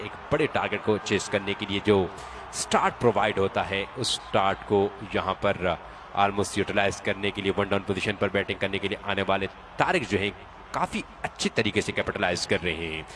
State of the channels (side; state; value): both; identical; correlation 1.00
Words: बड़े टारगेट को चेस करने के लिए जो स्टार्ट प्रोवाइड होता है उस स्टार्ट को यहाँ पर ऑलमोस्ट यूटिलाइज करने के लिए वन डाउन पोजीशन पर बैटिंग करने के लिए आने वाले तारिक जो है काफी अच्छी तरीके से कैपिटलाइज कर रहे हैं।